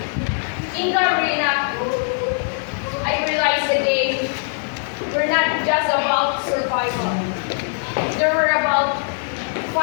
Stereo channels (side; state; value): right; silent; 59 dB below the other